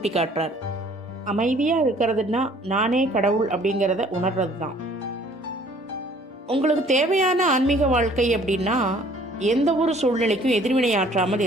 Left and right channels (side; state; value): both; normal; correlation 0.56